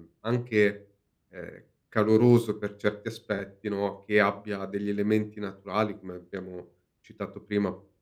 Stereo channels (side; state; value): both; identical; correlation 1.00